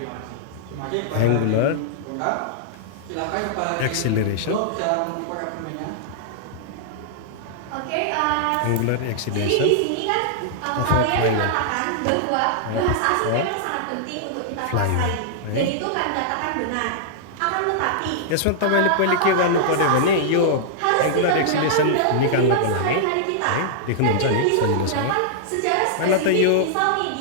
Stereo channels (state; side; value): different; both; correlation -0.01